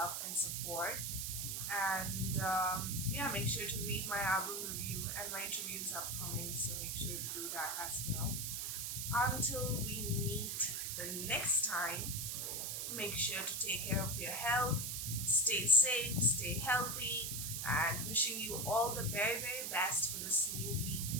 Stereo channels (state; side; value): noise; right; hiss, 2 dB below the sound